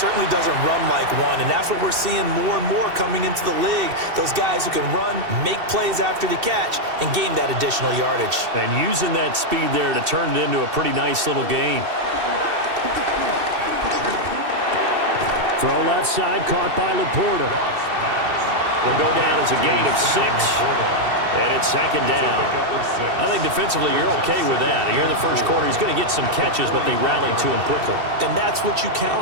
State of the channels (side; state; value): left; late; 2.7 ms